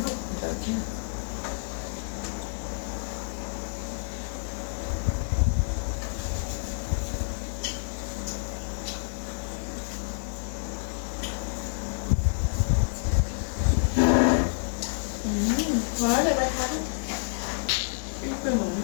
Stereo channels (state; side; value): silent; right; digital silence